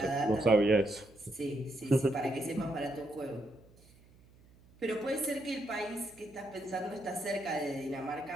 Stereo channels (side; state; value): right; noise; hum, 27 dB below the sound